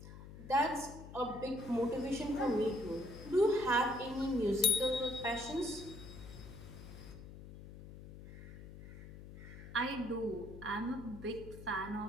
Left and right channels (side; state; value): left; noise; hum, 14 dB below the sound